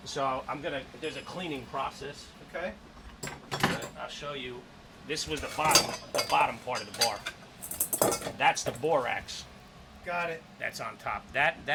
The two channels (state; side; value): identical; both; correlation 1.00